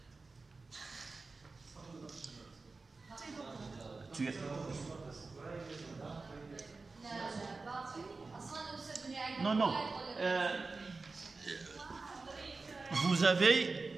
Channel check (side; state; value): left; quieter; 3.9 dB